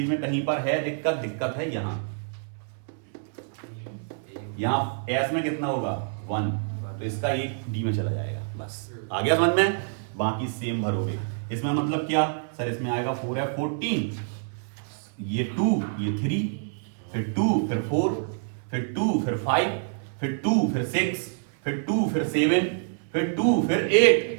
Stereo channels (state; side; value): silent; left; 60 dB below the other